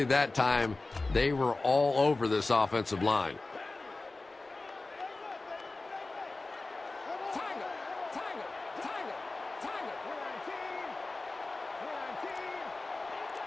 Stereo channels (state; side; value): quieter; right; 3.3 dB